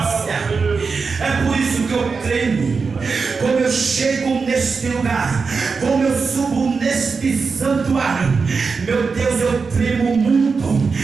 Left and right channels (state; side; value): quieter; left; 4.9 dB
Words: É por isso que eu tremo. Como eu chego neste lugar, como eu subo neste santuário, meu Deus, eu tremo muito,